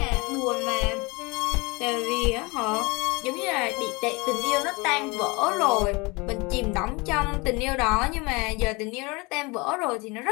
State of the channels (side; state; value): right; quieter; 26.5 dB